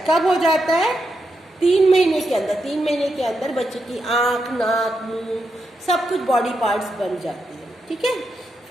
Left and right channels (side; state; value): both; normal; correlation 0.84